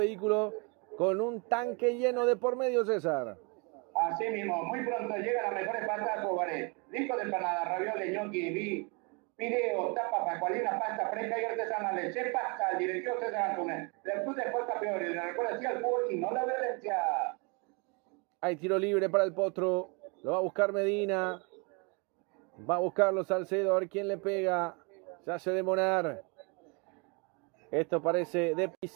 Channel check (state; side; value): quieter; left; 32.2 dB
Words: con un tanque lleno de por medio, César. Así mismo, muy pronto llegan las mejores pastas Cobaré. Disco de empanada, ravioles, gnocchi, video, tapas, pacualina, pasta fresca y artesanales. Se pasa al directivo César Antunes. Después de fuerza peor y le recuerda así al fútbol y no la violencia. Hay tiro libre para el Potro. Lo va a buscar Medina. Va a buscarlo Salcedo, a ver quién le pega. Se hace demorar. Esto parece de